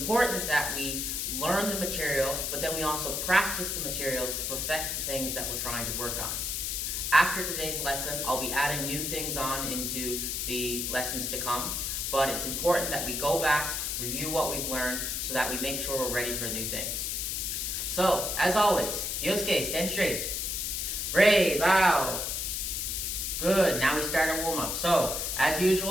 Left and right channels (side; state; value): left; noise; hiss, 1 dB below the sound